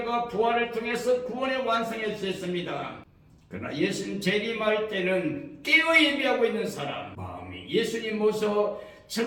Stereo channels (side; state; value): both; identical; correlation 1.00